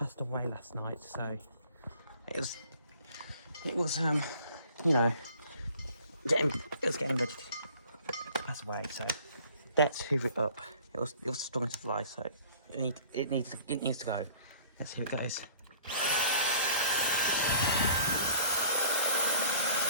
away last night. So it was you know, it was getting ready to pass away. So let's hoover it up. It was strong as a fly, so it needs to go. Let's see how it goes.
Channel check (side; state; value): both; inverted; correlation -0.52